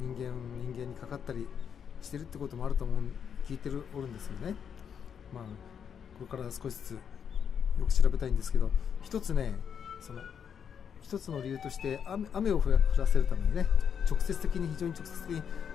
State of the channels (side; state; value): right; quieter; 7.6 dB